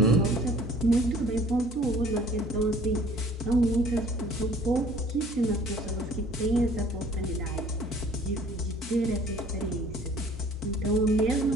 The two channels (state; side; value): normal; both; correlation 0.53